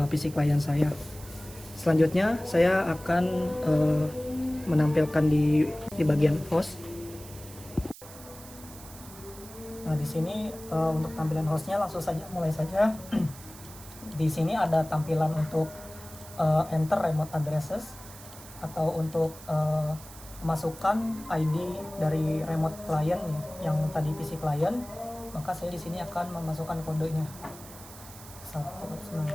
PC klien saya. Selanjutnya saya akan menampilkan di bagian host. Nah, di sini untuk tampilan hostnya langsung saja mulai saja. Di sini ada tampilan untuk enter remote addresses atau untuk masukkan ID dari remote client yang tadi PC client. Maka saya di sini akan memasukkan kodenya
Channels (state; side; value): noise; right; hiss, 17 dB below the sound